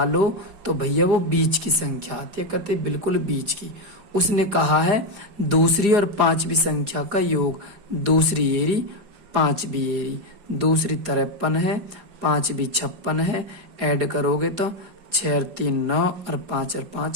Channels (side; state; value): left; late; 4.9 ms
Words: तो भैया वो बीच की संख्या आती है, कहते बिल्कुल बीच की। उसने कहा है दूसरी और 5वीं संख्या का योग, दूसरी एरी 5वीं एरी, दूसरी 53 है, 5वीं 56 है, ऐड करोगे तो 6 और 3 9 और 5 और